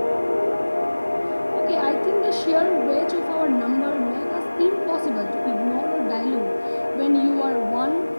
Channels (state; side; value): inverted; both; correlation -1.00